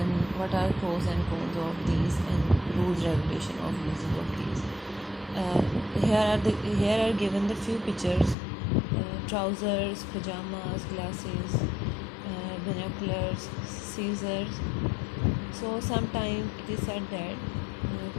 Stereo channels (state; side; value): drops out; right; at 8.3 s